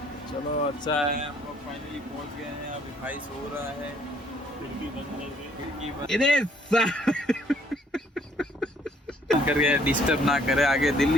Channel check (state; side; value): normal; both; correlation 0.63